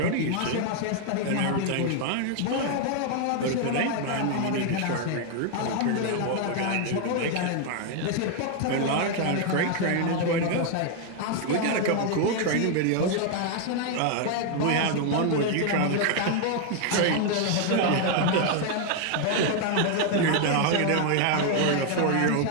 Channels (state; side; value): different; both; correlation 0.00